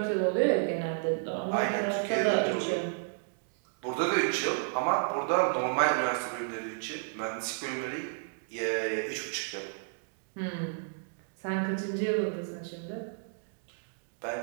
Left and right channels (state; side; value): silent; left; digital silence